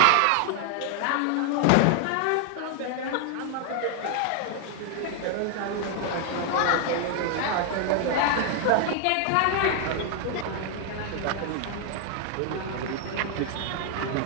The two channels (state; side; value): different; both; correlation 0.00